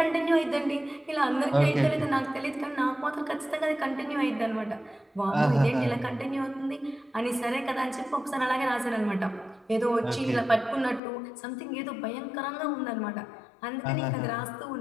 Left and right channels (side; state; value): right; drops out; at 11.0 s